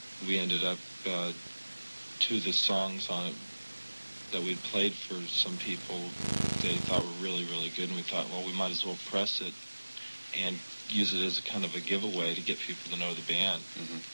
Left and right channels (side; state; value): both; inverted; correlation -1.00